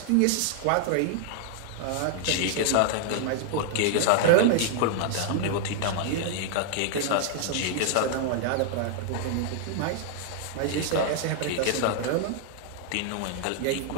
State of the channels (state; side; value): different; both; correlation 0.00